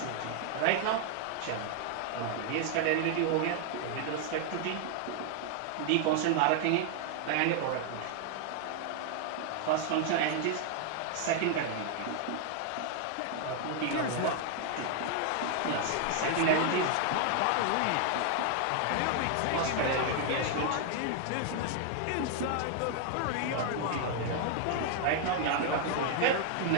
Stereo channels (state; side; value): different; both; correlation 0.00